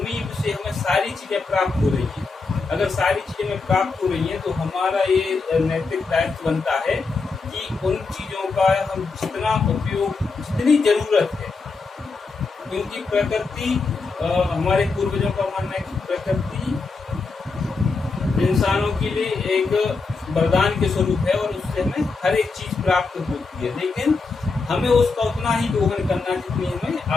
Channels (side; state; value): right; quieter; 4.2 dB